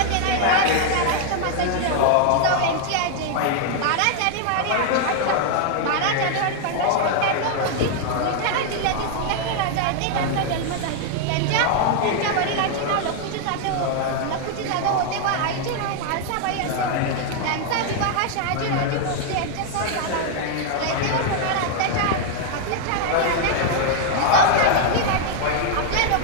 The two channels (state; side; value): different; both; correlation 0.00